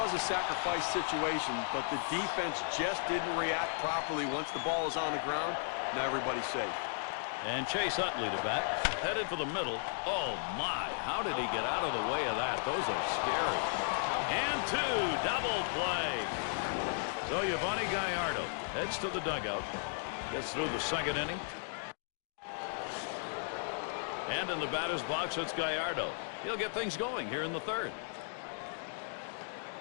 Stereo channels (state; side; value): silent; right; digital silence